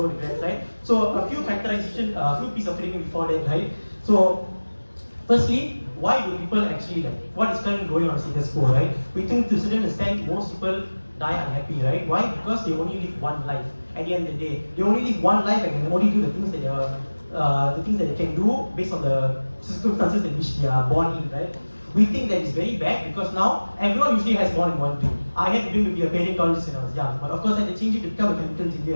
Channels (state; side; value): inverted; both; correlation -1.00